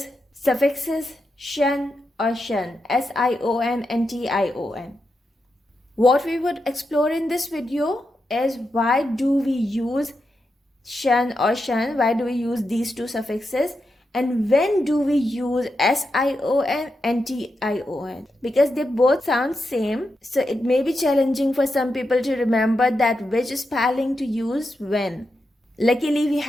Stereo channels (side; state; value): both; normal; correlation 0.87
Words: suffixes, SION or TION, SION and TION. What we would explore in this video is why do we use SION or TION, why do we use these two suffixes, and when do we use SION and TION, because they both sound same, so it may be challenging for some people to remember that which spelling to use when. Luckily, we